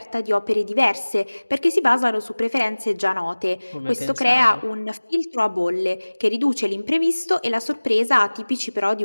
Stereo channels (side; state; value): both; inverted; correlation -1.00